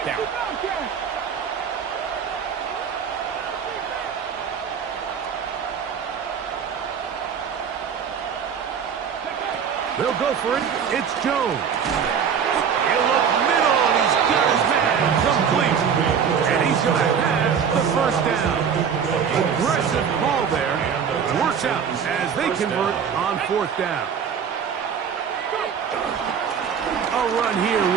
down. They'll go for it. It's Jones. He'll look middle, and he's got his man complete. And he's going to have the first down. Aggressive ball there. Works out as they convert on fourth down. A run here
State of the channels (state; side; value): quieter; left; 7.3 dB